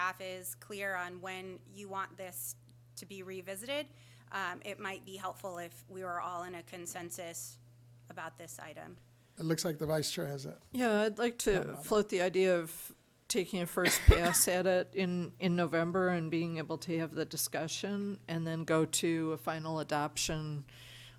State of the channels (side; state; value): both; identical; correlation 1.00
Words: is clear on when you want this to be revisited, it might be helpful if we were all in a consensus about this item. It looks like the vice chair has a, Yeah, I'd like to float the idea of taking a first pass at it in November and being able to have the discussion and then go to a final adoption